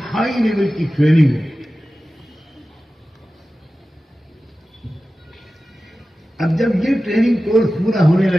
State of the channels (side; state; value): both; normal; correlation 0.95